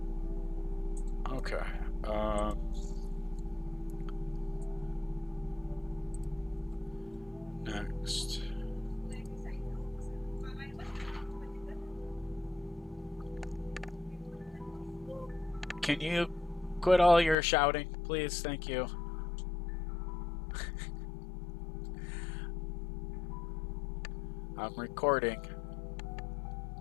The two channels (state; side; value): drops out; right; at 17.4 s